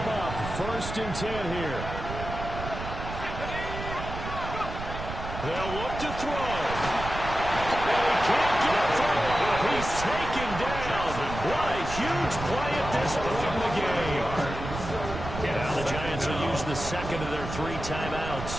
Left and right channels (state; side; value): noise; right; rumble, 8 dB below the sound